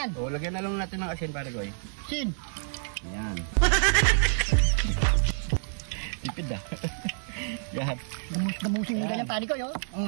O, lagyan na lang natin ng asin pare ko. Sin. Ayan. Tipid ah. Yan. Gamusing mo ganyan pare ko, yo.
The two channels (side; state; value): left; silent; 59 dB below the other